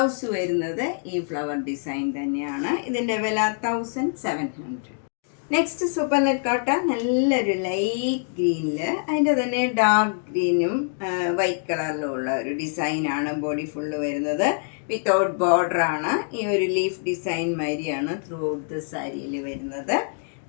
വരുന്നത് ഈ ഫ്ലവർ ഡിസൈൻ തന്നെയാണ്. ഇതിൻ്റെ വില 1700. നെക്സ്റ്റ് സൂപ്പർ നെറ്റ് കോട്ട നല്ലൊരു ലൈറ്റ് ഗ്രീനിൽ, അതിൻ്റെ തന്നെ ഡാർക്ക് ഗ്രീനും വൈറ്റ് കളറിലും ഉള്ള ഒരു ഡിസൈനാണ് ബോഡി ഫുള്ള് വരുന്നത്. വിത്തൗട്ട് ബോർഡറാണ്. ഈ ഒരു ലീഫ് ഡിസൈൻ മാതിരിയാണ് ത്രൂ ഔട്ട് ദ സാരിയിൽ വരുന്നത്.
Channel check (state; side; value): silent; right; 62 dB below the other